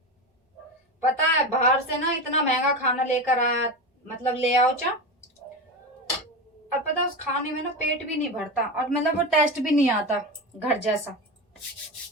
पता है बाहर से ना इतना महंगा खाना लेकर आया, मतलब ले आओ चा, और पता है उस खाने में ना पेट भी नहीं भरता, और मतलब वो टेस्ट भी नहीं आता घर जैसा।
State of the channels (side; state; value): both; normal; correlation 0.21